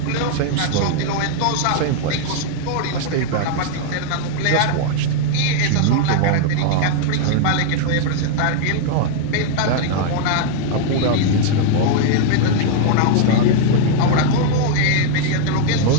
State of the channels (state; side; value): different; both; correlation 0.00